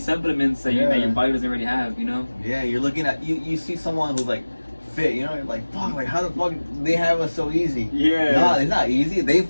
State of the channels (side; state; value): both; inverted; correlation -1.00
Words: that your body doesn't already have, you know? Yeah, you're looking at, you see someone who's like fit, you know, you're like, fuck, like how the fuck they have us so easy? Yeah. No, it's not easy. They